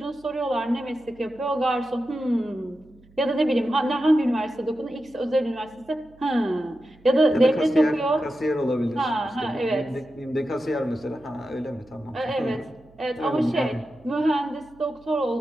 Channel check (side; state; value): right; noise; hum, 27 dB below the sound